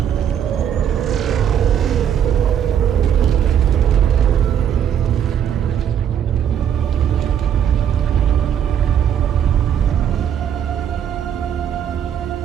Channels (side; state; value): left; quieter; 9.0 dB